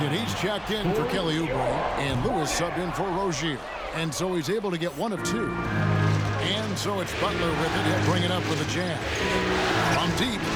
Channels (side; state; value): both; identical; correlation 1.00